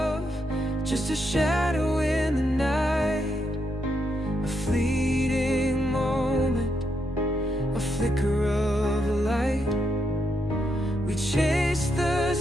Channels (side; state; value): both; normal; correlation 0.80